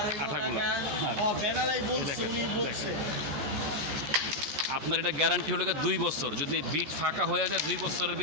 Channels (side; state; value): left; late; 13 ms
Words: আঠাগুলো। আপনার এটা গ্যারান্টি হলো 2 বছর। যদি বিট ফাঁকা হয়ে যায় 2 বছরের